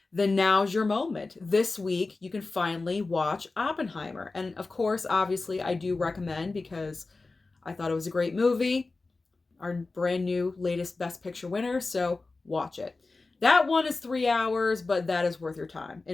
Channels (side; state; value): right; quieter; 3.6 dB